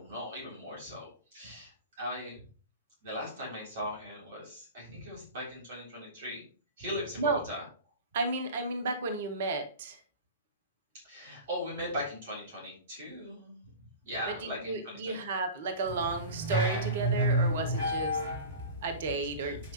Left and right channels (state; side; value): inverted; both; correlation -0.34